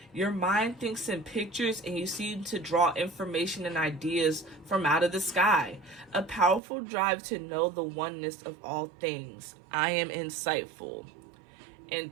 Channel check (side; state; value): left; drops out; at 6.6 s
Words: Your mind thinks in pictures and you seem to draw information and ideas from out of the sky. A powerful drive to know the oneness of all things. I am insightful. And